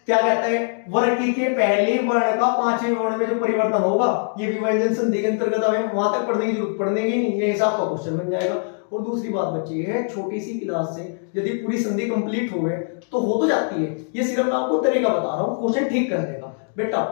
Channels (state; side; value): silent; right; digital silence